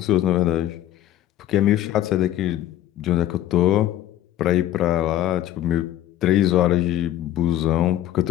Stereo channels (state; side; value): quieter; right; 12.9 dB